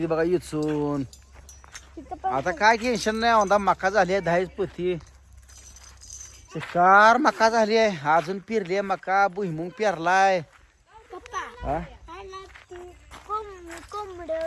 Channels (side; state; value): both; identical; correlation 1.00